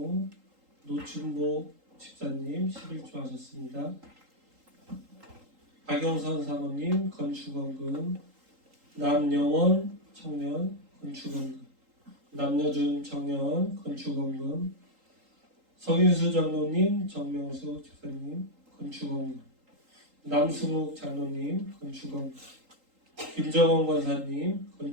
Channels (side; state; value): left; late; 3.8 ms